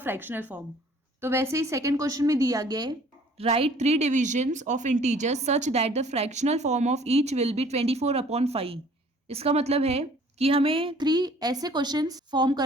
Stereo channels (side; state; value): both; normal; correlation 0.54